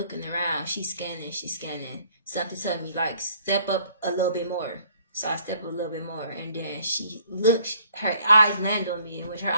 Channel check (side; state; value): both; inverted; correlation -0.59